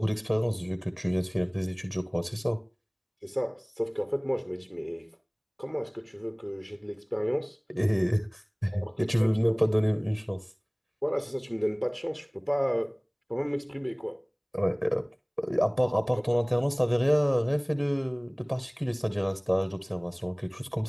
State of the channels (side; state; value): both; identical; correlation 1.00